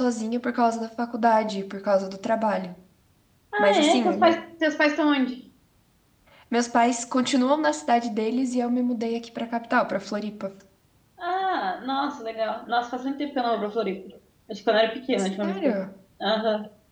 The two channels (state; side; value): identical; both; correlation 1.00